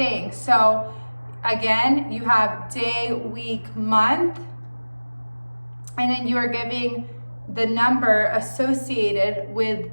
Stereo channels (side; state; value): both; inverted; correlation -1.00